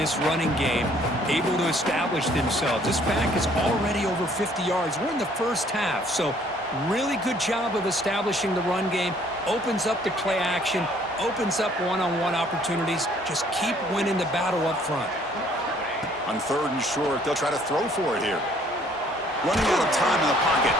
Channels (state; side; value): normal; both; correlation 0.60